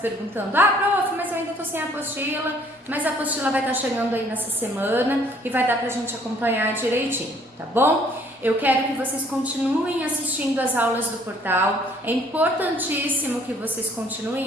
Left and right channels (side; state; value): both; normal; correlation 0.60